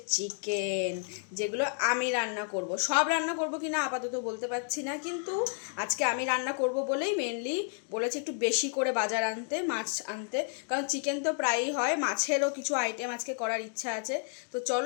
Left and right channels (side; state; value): right; silent; 57 dB below the other